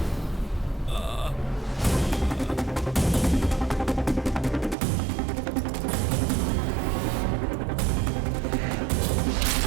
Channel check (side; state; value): left; drops out; at 4.8 s